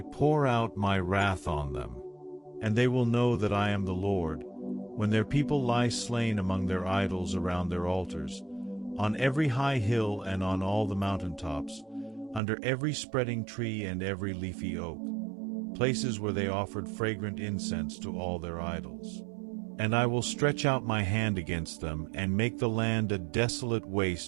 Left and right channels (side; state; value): left; drops out; at 12.4 s